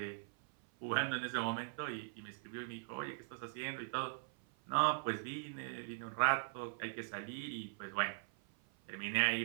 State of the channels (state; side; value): silent; left; 51 dB below the other